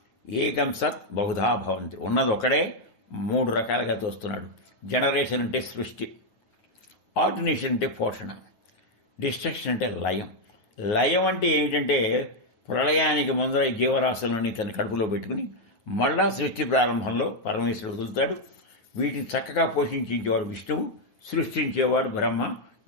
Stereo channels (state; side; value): late; right; 9.2 ms